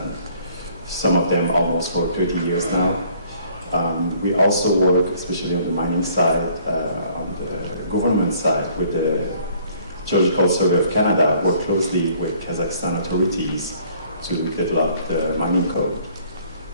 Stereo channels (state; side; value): inverted; both; correlation -0.59